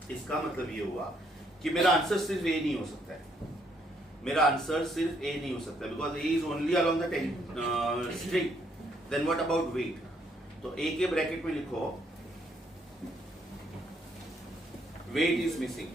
ये हुआ कि मेरा आंसर सिर्फ ए नहीं हो सकता है, मेरा आंसर सिर्फ ए नहीं हो सकता, because A is only along the string. Then what about weight? तो ए के ब्रैकेट में लिखो वेट इज मिसिंग।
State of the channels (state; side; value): normal; both; correlation 0.70